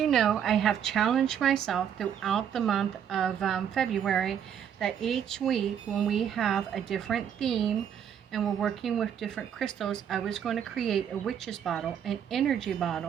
know, I have challenged myself throughout the month of February that each week when we have a different theme and we're working with different crystals, I was going to create a witch's bottle, an energy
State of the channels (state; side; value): quieter; left; 8.7 dB